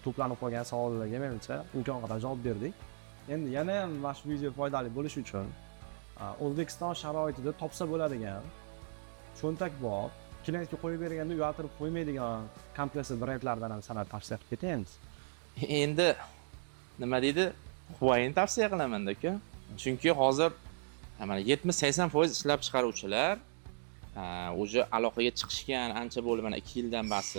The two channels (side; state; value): left; silent; digital silence